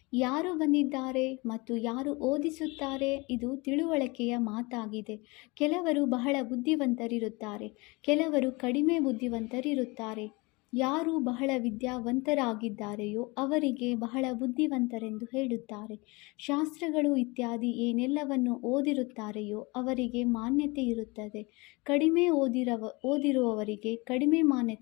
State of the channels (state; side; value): quieter; right; 25.8 dB